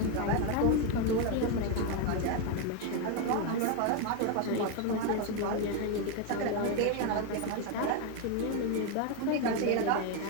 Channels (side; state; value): both; different; correlation 0.01